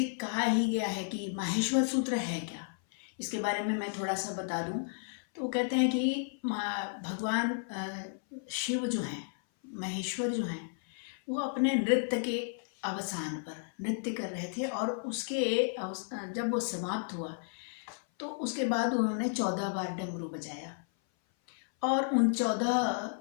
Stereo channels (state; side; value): silent; right; 56 dB below the other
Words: कहा ही गया है कि माहेश्वर सूत्र है क्या, इसके बारे में मैं थोड़ा सा बता दूं। तो कहते हैं कि भगवान शिव जो हैं, महेश्वर जो हैं, वो अपने नृत्य के अवसान पर नृत्य कर रहे थे, और उसके जब वो समाप्त हुआ तो उसके बाद उन्होंने 14 बार डमरू बजाया, और उन 14